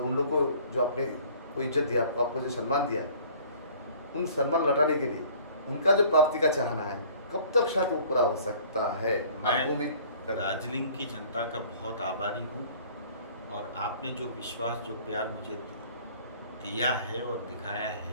उन लोगों को जो आपने को इज्जत दिया, आपको जो सम्मान दिया, उन सम्मान लौटाने के लिए उनका जो प्राप्ति का चाहना है, कब तक शायद वो पूरा हो सकता है? आपको उम्मीद मैं दार्जिलिंग की जनता का बहुत आभारी हूँ, और आपने जो विश्वास, जो प्यार मुझे दिया है और दिखाया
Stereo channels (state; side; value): inverted; both; correlation -0.52